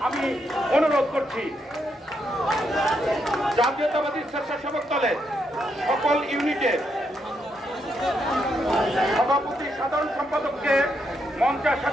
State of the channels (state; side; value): normal; both; correlation 0.79